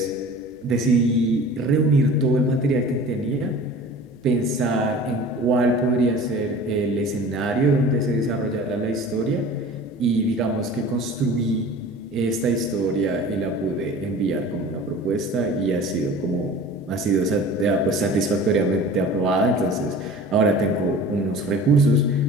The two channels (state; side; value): noise; left; hum, 30 dB below the sound